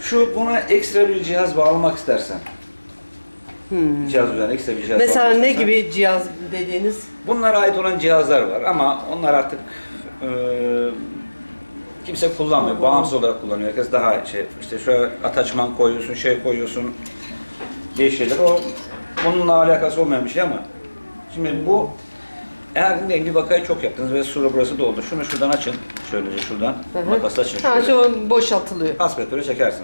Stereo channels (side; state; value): both; inverted; correlation -1.00